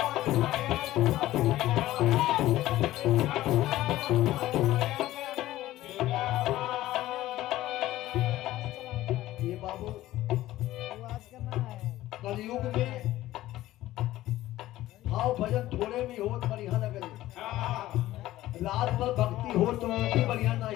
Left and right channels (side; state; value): right; quieter; 15.4 dB